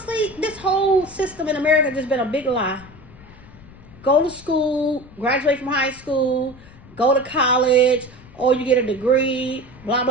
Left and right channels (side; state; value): left; noise; rumble, 21 dB below the sound